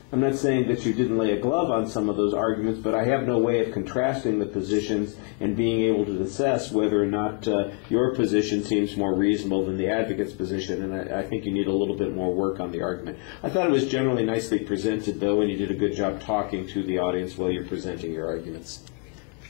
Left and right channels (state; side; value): quieter; right; 35.1 dB